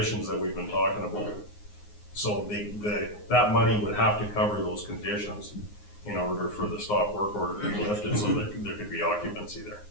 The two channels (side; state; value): right; late; 9.6 ms